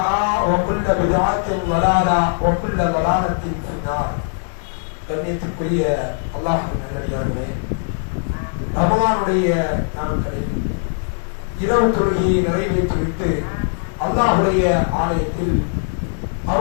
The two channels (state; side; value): silent; right; digital silence